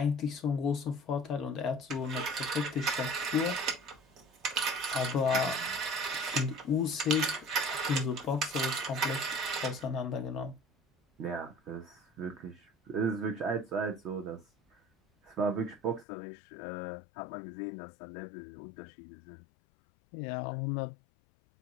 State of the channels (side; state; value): right; drops out; at 16.1 s